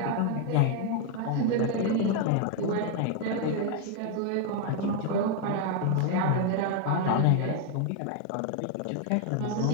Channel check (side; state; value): both; different; correlation 0.01